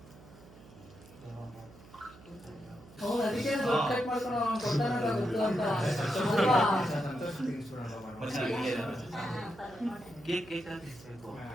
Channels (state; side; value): noise; right; hum, 21 dB below the sound